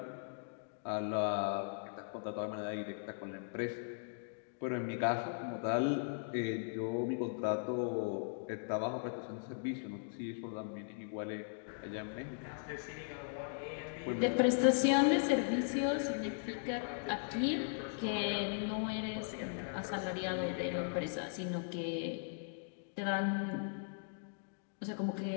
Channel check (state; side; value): silent; right; digital silence